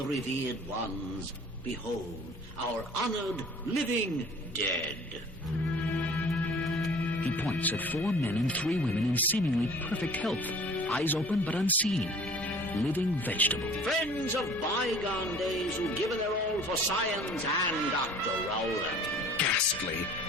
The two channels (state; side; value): noise; right; hum, 26 dB below the sound